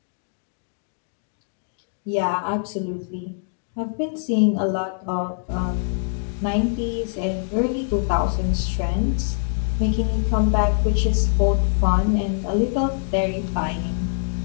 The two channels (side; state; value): right; silent; digital silence